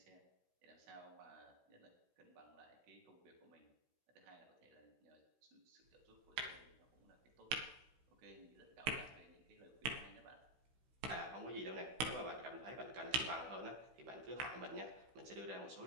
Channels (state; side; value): late; left; 16 ms